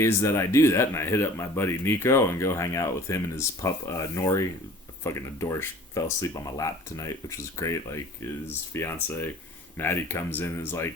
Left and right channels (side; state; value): both; normal; correlation 0.47